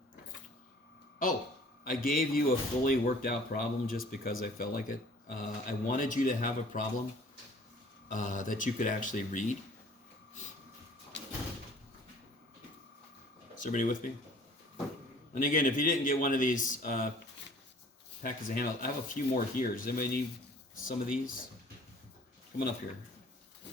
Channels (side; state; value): both; normal; correlation 0.51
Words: Oh, I gave you a fully worked out problem just because I felt like it. I wanted you to have a problem that you could actually read. Is everybody with me? And again, if you didn't get one of these packets of handouts, I have a few more here. Does anybody need some of these? Come on up here.